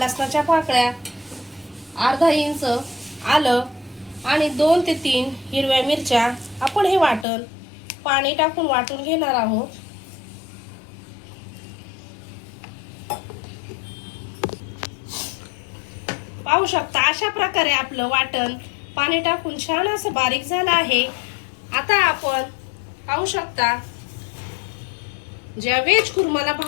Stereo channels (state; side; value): drops out; right; at 7.2 s